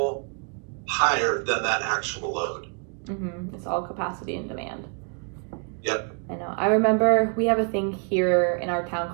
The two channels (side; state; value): left; quieter; 39.7 dB